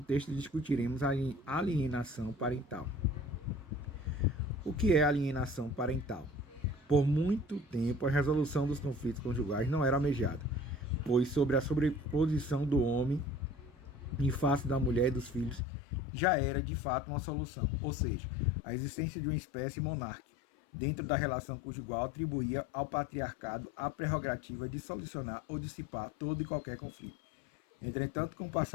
discutiremos a alienação parental. O que é alienação parental? Por muito tempo, a resolução dos conflitos conjugais não era almejada, pois sobre a sobreposição do homem em face da mulher e dos filhos já era de fato uma solução, ou seja, a existência de uma espécie monárquica dentro da relação conjugal atribuía ao patriarcado a prerrogativa de solucionar ou dissipar todo e qualquer conflito. Entretanto, com o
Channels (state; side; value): drops out; right; at 15.6 s